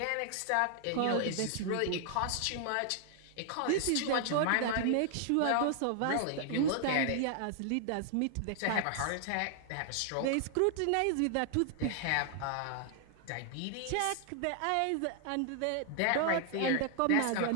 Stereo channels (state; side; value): different; both; correlation 0.00